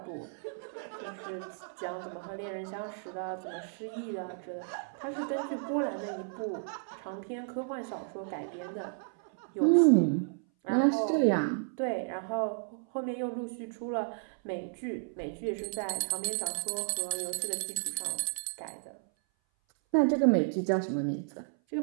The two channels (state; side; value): silent; left; 56 dB below the other